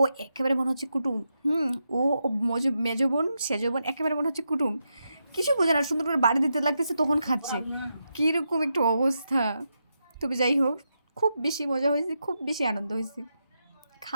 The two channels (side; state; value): both; inverted; correlation -0.85